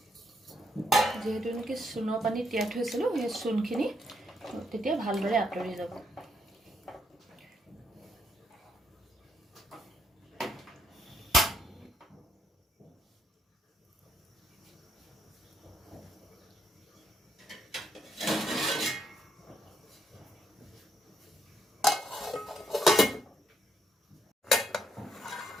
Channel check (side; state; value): both; normal; correlation 0.76